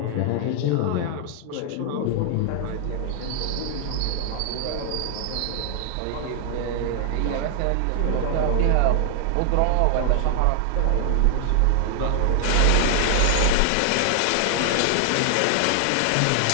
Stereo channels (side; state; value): both; different; correlation 0.00